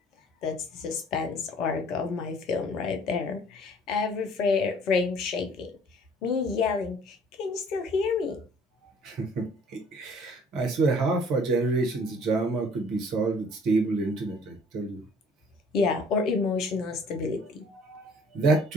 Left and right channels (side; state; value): both; normal; correlation 0.55